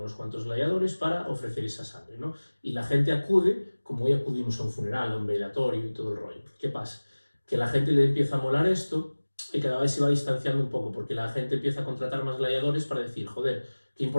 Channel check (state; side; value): inverted; both; correlation -1.00